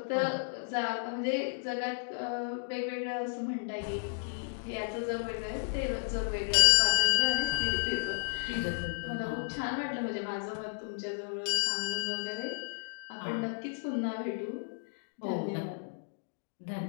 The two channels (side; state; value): right; silent; digital silence